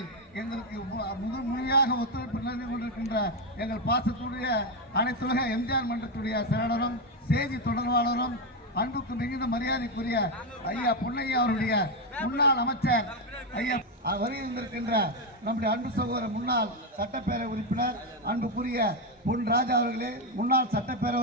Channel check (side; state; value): both; normal; correlation 0.07